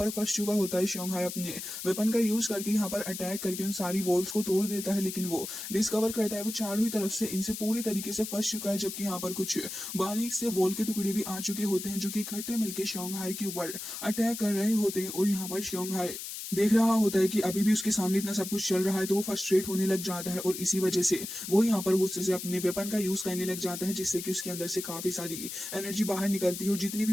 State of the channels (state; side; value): noise; left; hiss, 8 dB below the sound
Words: फंस चुका होता है। शोंघाई अपने वेपन का यूज करके यहाँ पर अटैक करके उन सारी वॉल्स को तोड़ देता है, लेकिन वो डिस्कवर करता है वो चारों ही तरफ से इनसे पूरी तरीके से फंस चुका है। जबकि यहाँ पर कुछ बारीक से वॉल के टुकड़े भी आ चुके होते हैं जो कि इकट्ठे मिलकर शोंघाई के ऊपर अटैक कर रहे होते हैं। और यहाँ पर शोंघाई देख रहा होता है कि अभी भी उसके सामने इतना सब कुछ चल रहा है, तो वो फ्रस्ट्रेट होने लग जाता है और इसी वजह से वो यहाँ पर गुस्से से अपने वेपन का यूज करने लग जाता है, जिससे कि उसके अंदर से काफी सारी एनर्जी बाहर निकलती है और जितनी